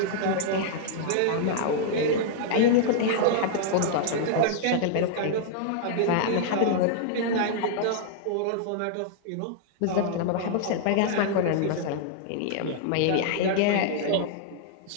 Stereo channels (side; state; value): both; different; correlation -0.01